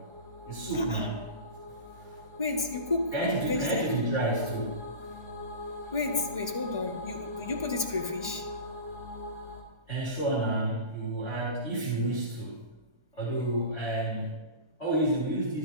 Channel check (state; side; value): late; left; 1.3 ms